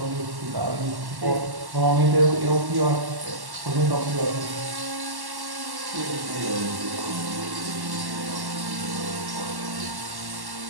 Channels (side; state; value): left; late; 1.1 ms